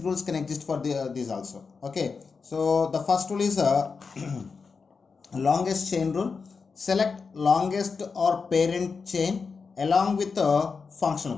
rules can exist for these also. Okay, so the first rule is longest chain rule. Select longest or parent chain along with a functional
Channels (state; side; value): quieter; right; 5.0 dB